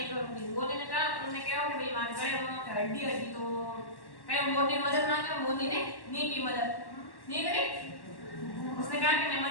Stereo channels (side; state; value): right; late; 1.1 ms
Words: करूंगी। मोरनी ने कहा, उन्होंने कहा कि भाई मान गए वो हड्डी हड्डी तो कहीं मोरनी ने मदद मांगी। मोरनी ने नहीं की मदद, नहीं करी। उसने कहा कि मैं